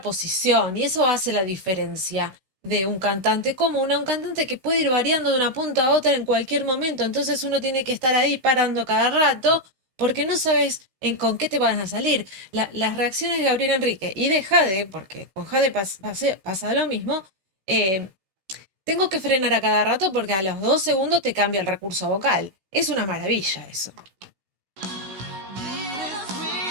Y eso hace la diferencia de un cantante común a un cantante que puede ir variando de una punta a otra en cualquier momento. Entonces uno tiene que estar ahí parando cada rato porque no sabes con qué te van a salir. Las reacciones de Gabriel Enrique y de Jade, porque con Jade pasa lo mismo, eh, tengo que frenar a cada rato porque a los 2 segundos te cambia el recurso vocal. Es una maravilla eso.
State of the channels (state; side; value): late; left; 16 ms